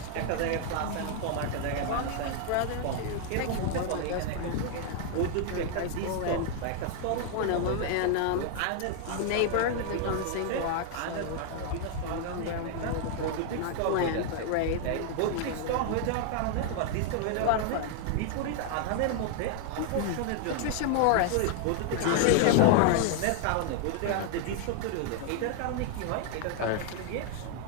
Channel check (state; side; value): different; both; correlation 0.00